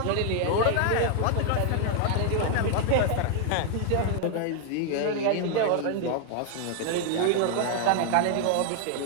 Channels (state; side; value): different; both; correlation 0.00